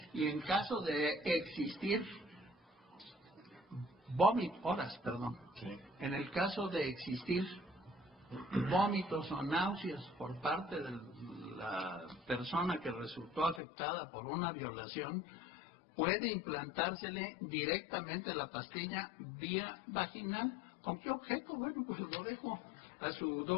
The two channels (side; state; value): right; drops out; at 13.6 s